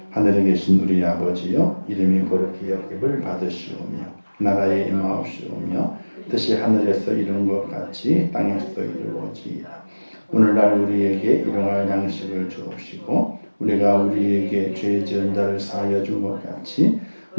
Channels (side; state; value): both; inverted; correlation -1.00